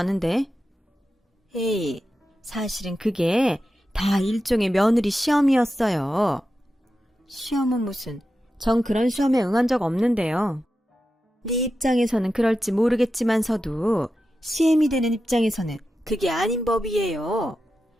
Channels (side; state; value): both; normal; correlation 0.91